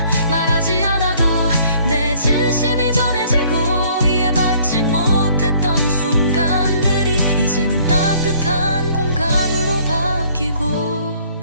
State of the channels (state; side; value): inverted; both; correlation -0.59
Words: 말하지 않아도 내 진심이 전해지고 이해받지 못했던 순간들이 이제는 따뜻한 공감으로 바뀌고